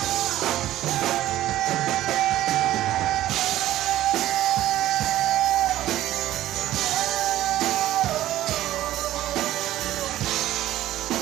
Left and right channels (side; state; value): left; quieter; 14.1 dB